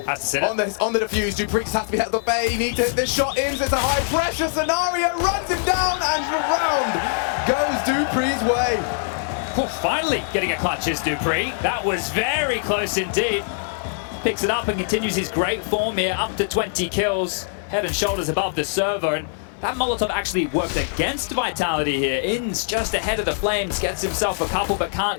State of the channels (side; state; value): right; silent; digital silence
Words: the defuse. Dupree has to be held at bay. Need to hit this shot. Ins, it's a high pressure scenario. Runs him down, and around goes Dupree's way. Well, finally getting a clutch is Dupree. That was very close indeed. Picks it up and continues his great form here, up to 20 kills, head and shoulders above the server. And that Molotov actually worked against Vitality here. Ins just ahead of the Flames, gets himself a couple, but